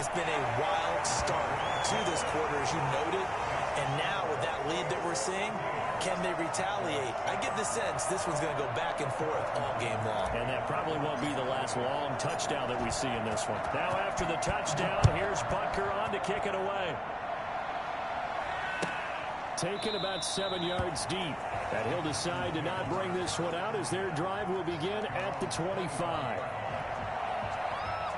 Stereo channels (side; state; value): both; identical; correlation 1.00